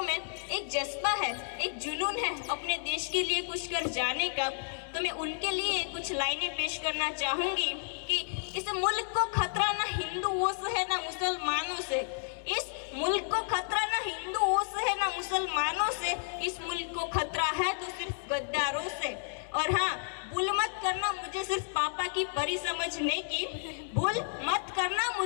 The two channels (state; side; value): silent; right; digital silence